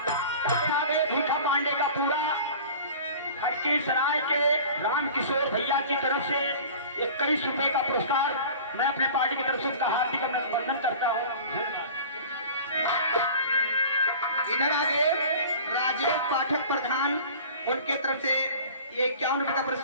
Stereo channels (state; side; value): inverted; both; correlation -0.41